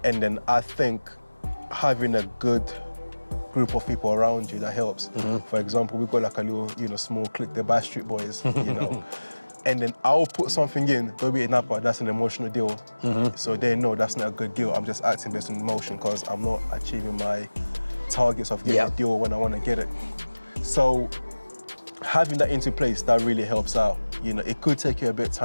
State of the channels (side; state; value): both; inverted; correlation -1.00